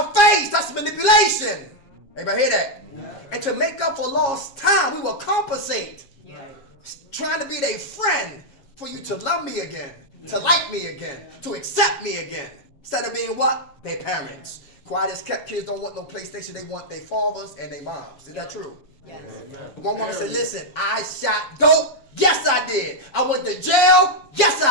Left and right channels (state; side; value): late; right; 7.3 ms